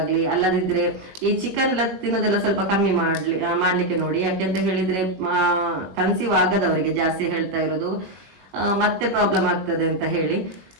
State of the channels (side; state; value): left; late; 20 ms